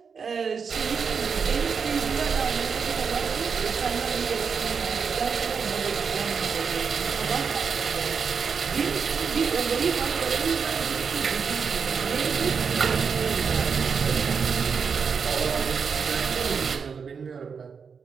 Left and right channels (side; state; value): left; quieter; 6.0 dB